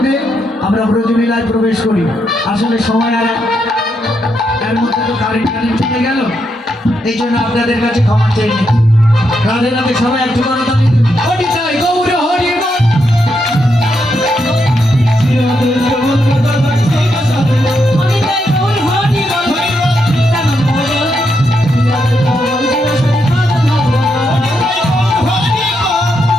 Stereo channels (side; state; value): both; normal; correlation 0.81